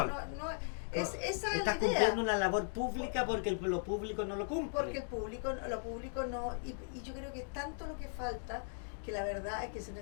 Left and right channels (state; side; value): silent; right; digital silence